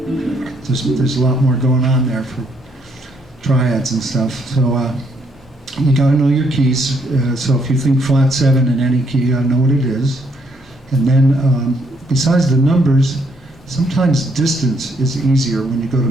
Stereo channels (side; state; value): both; normal; correlation 0.71